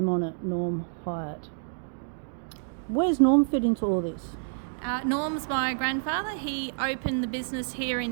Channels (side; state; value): left; silent; digital silence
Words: on it, Norm Hyatt. Where's Norm fit into all this? Norm's my grandfather. He opened the business here